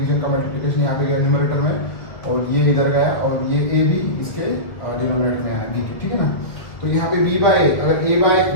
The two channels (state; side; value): late; right; 2.0 ms